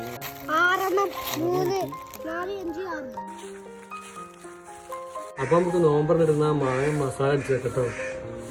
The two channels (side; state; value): both; identical; correlation 1.00